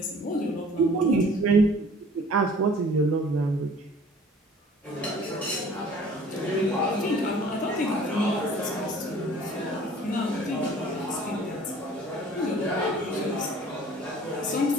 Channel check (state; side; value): normal; both; correlation 0.50